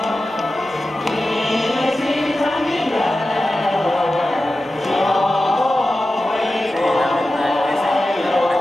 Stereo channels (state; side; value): normal; both; correlation 0.93